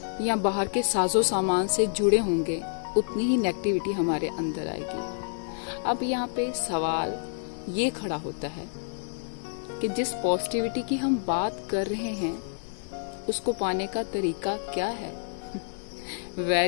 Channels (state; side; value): silent; right; digital silence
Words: या बाहर के साजो सामान से जुड़े होंगे उतनी ही नेगेटिविटी हमारे अंदर आएगी। अब यहाँ पे सवाल ये खड़ा होता है कि जिस पॉजिटिविटी की हम बात कर रहे हैं उसको पाने का तरीका क्या है?